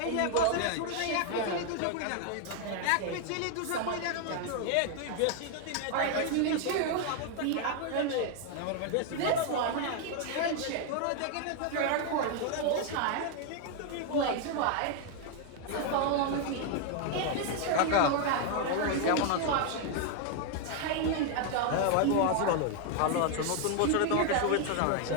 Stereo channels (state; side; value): different; both; correlation 0.00